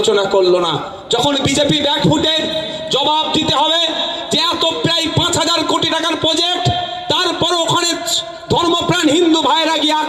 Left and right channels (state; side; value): identical; both; correlation 1.00